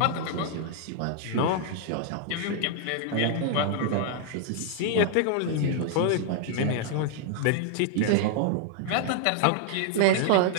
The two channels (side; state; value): both; different; correlation 0.00